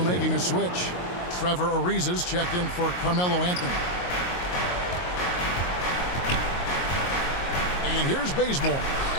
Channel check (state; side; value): late; right; 22 ms